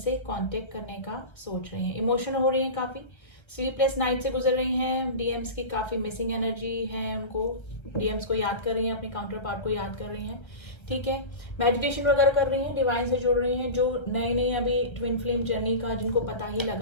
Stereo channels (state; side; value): late; right; 1.3 ms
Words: कांटेक्ट करने का सोच रही हैं। इमोशनल हो रही हैं, काफ़ी स्लीपलेस नाइट से गुजर रही हैं। डीएम्स की काफ़ी मिसिंग एनर्जी है, उनको डीएम्स को याद कर रही हैं, अपने काउंटर पार्ट को याद कर रही हैं, ठीक है। मेडिटेशन वगैरह कर रही हैं, डिवाइन से जुड़ रही हैं। जो नई नई अभी ट्विन फ्लेम जर्नी का जिनको पता ही